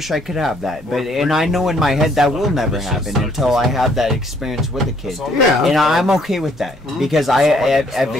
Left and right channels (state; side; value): normal; both; correlation 0.65